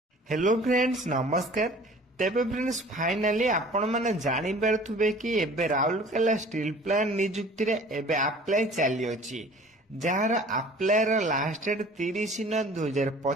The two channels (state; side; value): normal; both; correlation 0.47